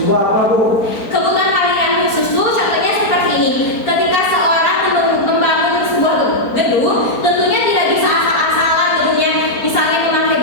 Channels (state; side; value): late; right; 4.4 ms